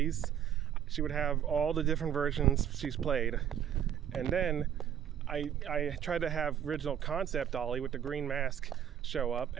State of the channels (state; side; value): quieter; left; 9.8 dB